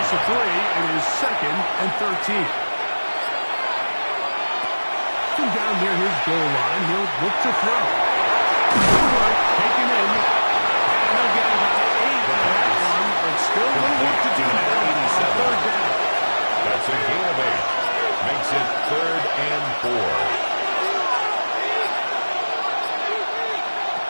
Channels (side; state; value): both; inverted; correlation -1.00